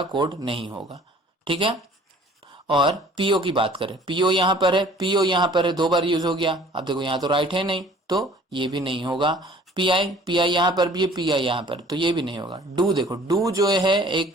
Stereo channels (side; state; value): both; normal; correlation 0.52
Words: कोड नहीं होगा, ठीक है। और PO की बात करें, PO यहाँ पर है, PO यहाँ पर है, दो बार यूज हो गया। अब देखो यहाँ तो राइट है नहीं, तो ये भी नहीं होगा। PI यहाँ पर भी है, PI यहाँ पर, तो ये भी नहीं होगा। डू देखो, डू जो है